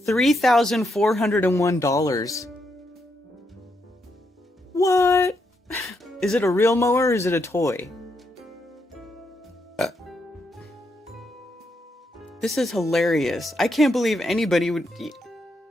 $3,401. What? Is it a real mower or is it a toy? This is hilarious. I can't believe anybody would...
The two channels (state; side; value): normal; both; correlation 0.80